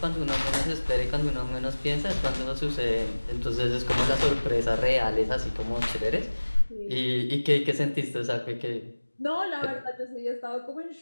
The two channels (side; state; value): both; inverted; correlation -1.00